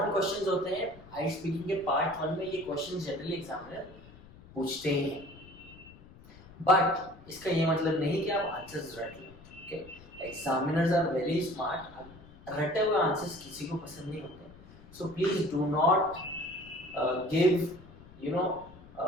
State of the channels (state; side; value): noise; left; rumble, 21 dB below the sound